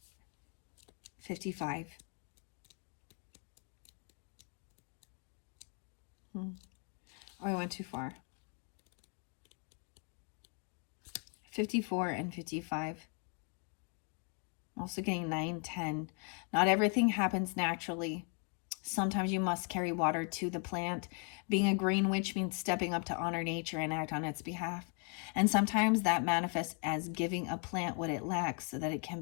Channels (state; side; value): quieter; right; 39.9 dB